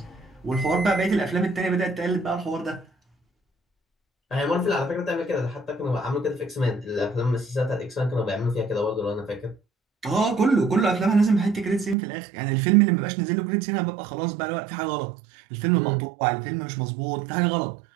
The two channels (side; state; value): left; drops out; at 12.0 s